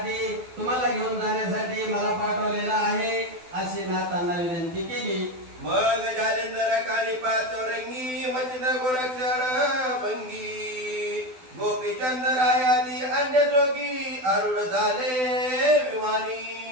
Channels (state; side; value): late; left; 12 ms